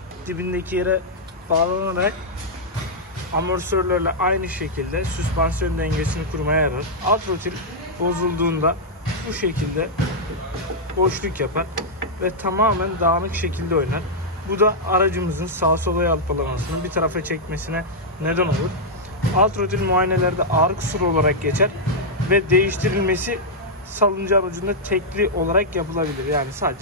dibindeki yere bağlanarak amortisörlerle aynı şekilde süspansiyon dengesini kurmaya yarar. Alt rotil bozulduğunda bu şekilde boşluk yapar ve tamamen dağınık şekilde oynar. Bu da aracımızın sağa sola yalpalamasını bir tarafa çekmesine neden olur. Alt rotil muayenelerde ağır kusur olarak geçer ve değiştirilmesi salıncağın ucunda tekli olarak yapılabilir. Yani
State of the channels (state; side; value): normal; both; correlation -0.05